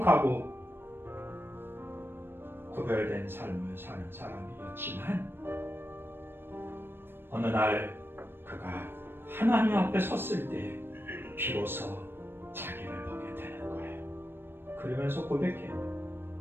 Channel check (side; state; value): left; late; 0.10 ms